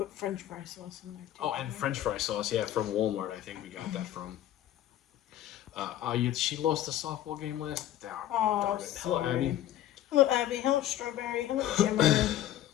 French fry sauce in there too. Oh, and French fry sauce, yeah, from Walmart. I think we got that from. She lost the softball game last. Oh, Darn it. Hello, sorry. Abby. Hello, Abby. Hello, Strawberry. Hello, Jimmer.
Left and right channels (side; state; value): right; quieter; 12.5 dB